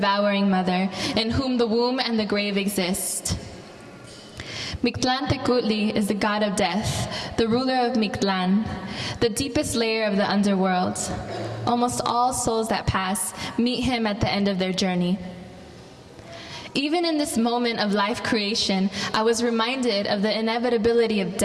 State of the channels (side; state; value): both; identical; correlation 1.00